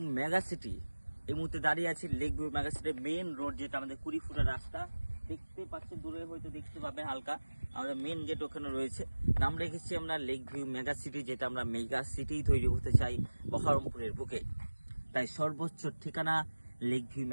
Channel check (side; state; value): both; inverted; correlation -1.00